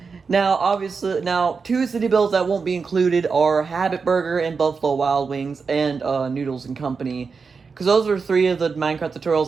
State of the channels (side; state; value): left; quieter; 5.1 dB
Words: now, obviously, 2 city builds that won't be included are Habit Burger and Buffalo Wild Wings and Noodles and Company. Because those are 3 of the Minecraft tutorials